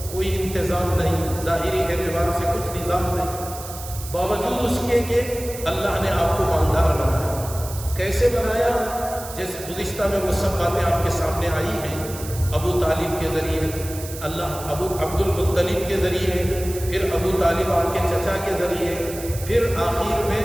کوئی انتظام نہیں، ظاہری اعتبار سے کچھ نظام نہیں. باوجود اس کے کہ اللہ نے آپ کو مالدار بنایا. کیسے بنایا؟ جیسے گزشتہ میں وہ سب باتیں آپ کے سامنے آئی ہیں. ابو طالب کے ذریعے، ابو عبد المطلب کے ذریعے، پھر ابو طالب آپ کے چچا کے ذریعے، پھر آخر میں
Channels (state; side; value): noise; right; hiss, 12 dB below the sound